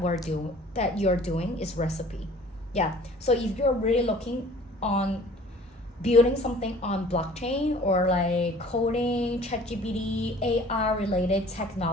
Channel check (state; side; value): normal; both; correlation 0.49